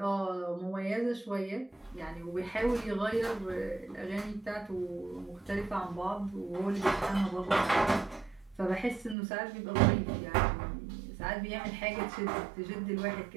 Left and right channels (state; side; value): drops out; left; at 9.2 s